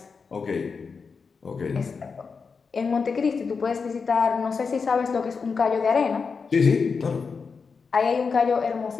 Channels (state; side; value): quieter; right; 5.2 dB